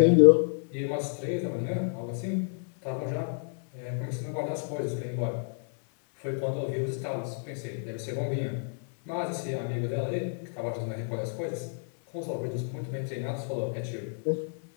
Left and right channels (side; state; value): right; silent; 58 dB below the other